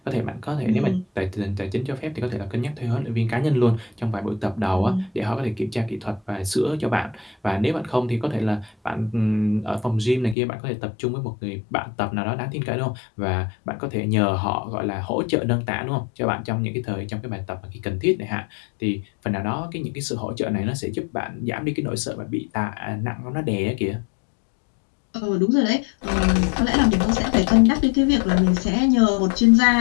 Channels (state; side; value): drops out; right; at 10.4 s